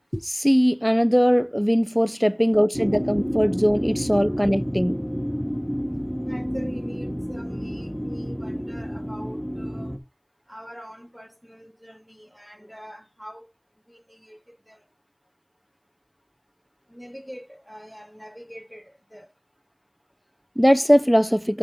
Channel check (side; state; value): both; identical; correlation 1.00